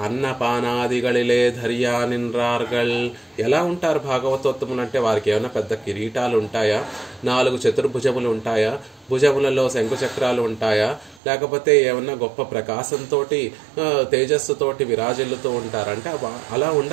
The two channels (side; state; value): left; drops out; at 11.2 s